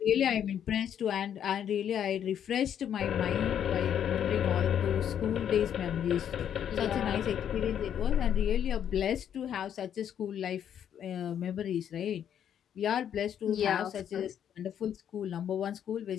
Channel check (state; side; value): quieter; right; 9.3 dB